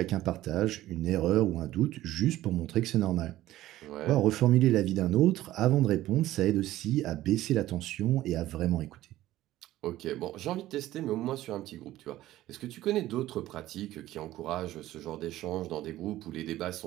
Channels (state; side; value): quieter; left; 15.0 dB